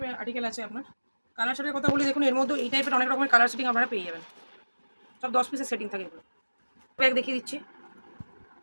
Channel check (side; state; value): both; inverted; correlation -1.00